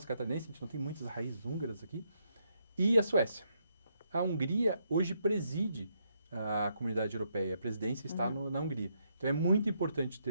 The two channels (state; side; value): inverted; both; correlation -0.77